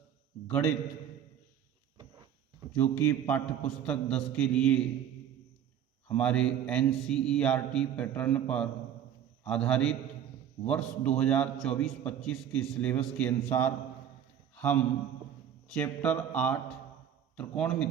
गणित जो कि पाठ्यपुस्तक 10 के लिए हमारे एनसीईआरटी पैटर्न पर आधारित वर्ष 2024-25 के सिलेबस के अनुसार हम चैप्टर 8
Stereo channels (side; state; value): left; quieter; 9.6 dB